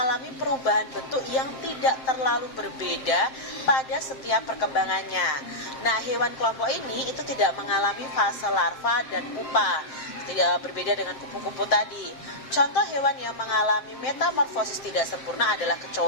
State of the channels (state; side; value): late; right; 7.6 ms